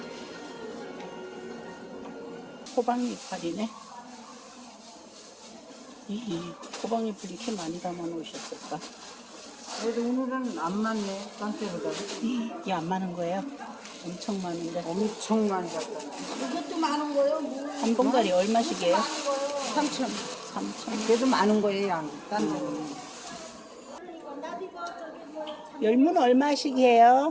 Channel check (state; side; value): identical; both; correlation 1.00